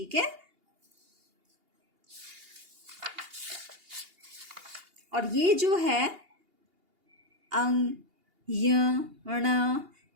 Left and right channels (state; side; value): late; left; 2.8 ms